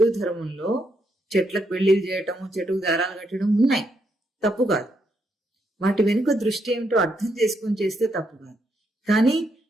ధర్మంలో చెట్లకు పెళ్లిళ్ళు చేయటము, చెట్టుకు దారాలు కట్టడం ఉన్నాయి, తప్పు కాదు. వాటి వెనుక దృష్టి ఏమిటో అర్థం చేసుకొని చేస్తే తప్పు కాదు. కానీ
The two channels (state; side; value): normal; both; correlation 0.78